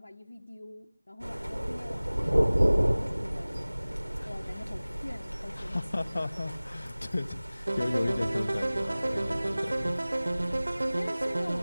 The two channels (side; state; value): both; inverted; correlation -0.99